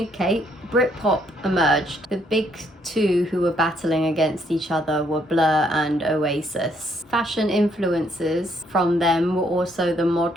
Kate, Britpop emerged. The big two who were battling against each other were Blur and Oasis. Fashion influences from them were also the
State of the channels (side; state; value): both; normal; correlation 0.70